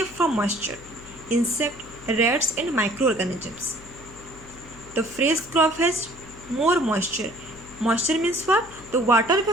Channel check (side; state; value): left; noise; hum, 20 dB below the sound